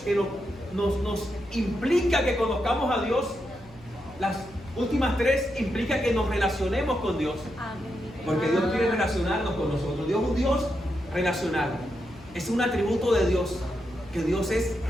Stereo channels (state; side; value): noise; left; hum, 23 dB below the sound